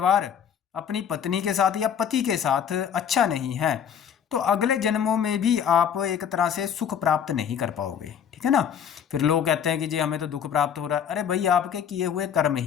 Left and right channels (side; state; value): right; quieter; 8.2 dB